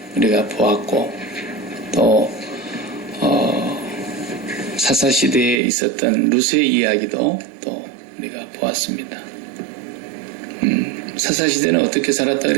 우리가 보았고, 또 사사 시대에 있었던 루스의 이야기도 또 우리가 보았습니다. 사사 시대는 어떻게 살았다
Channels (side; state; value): left; drops out; at 5.6 s